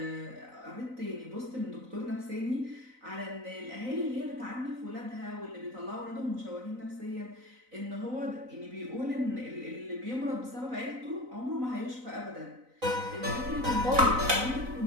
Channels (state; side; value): late; left; 4.0 ms